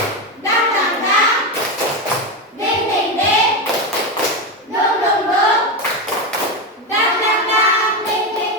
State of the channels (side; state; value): both; normal; correlation 0.13